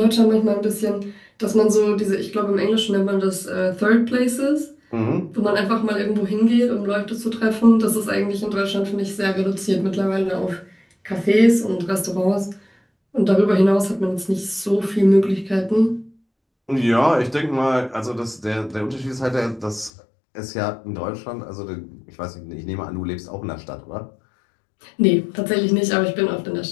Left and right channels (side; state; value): right; drops out; at 19.9 s